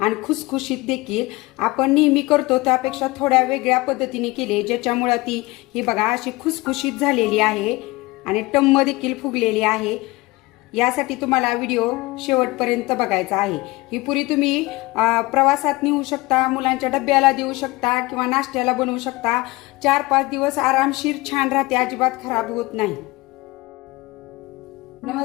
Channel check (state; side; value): quieter; right; 21.6 dB